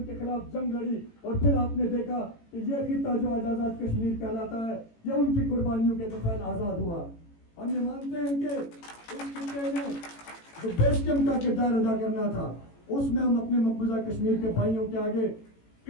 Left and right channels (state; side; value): late; right; 18 ms